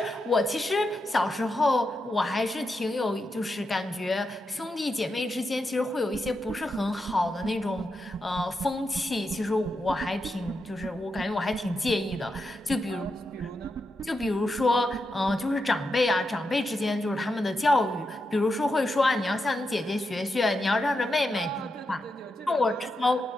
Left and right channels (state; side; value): normal; both; correlation 0.86